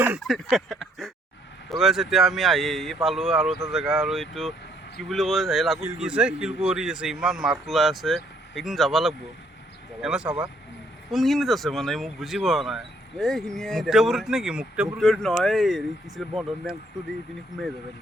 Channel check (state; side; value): normal; both; correlation 0.67